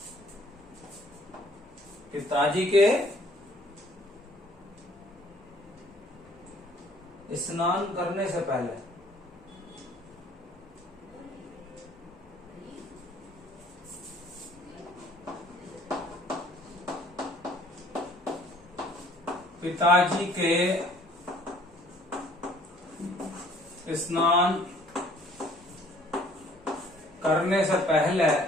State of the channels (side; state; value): both; normal; correlation 0.58